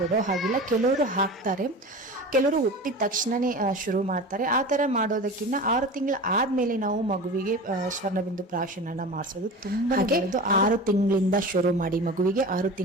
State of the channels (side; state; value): both; normal; correlation 0.33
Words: ಹಾಗಿಲ್ಲ. ಕೆಲವರು ಹಾಕ್ತಾರೆ, ಕೆಲವರು ಹುಟ್ಟಿದ ತಕ್ಷಣನೇ ಶುರು ಮಾಡ್ತಾರೆ. ಆ ಥರ ಮಾಡೋದಕ್ಕಿಂತ 6 ತಿಂಗಳು ಆದಮೇಲೆ ನಾವು ಮಗುವಿಗೆ ಸ್ವರ್ಣಬಿಂದು ಪ್ರಾಶನನ ಮಾಡಿಸೋದು ತುಂಬ ಒಳ್ಳೆಯದು. 6 ತಿಂಗಳಿಂದ ಶುರು ಮಾಡಿ, ಮಗುವಿಗೆ 6